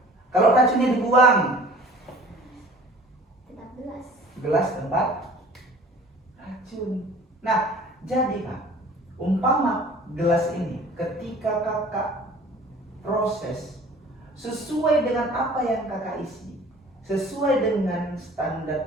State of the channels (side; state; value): both; normal; correlation 0.47